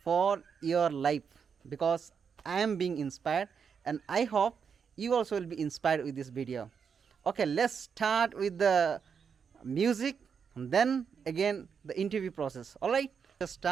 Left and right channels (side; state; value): left; quieter; 6.6 dB